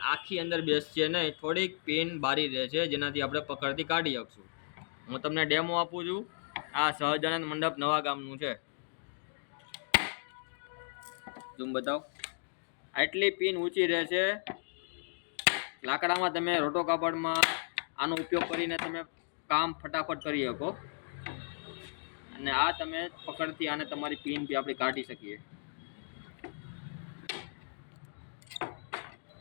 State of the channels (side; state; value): right; silent; digital silence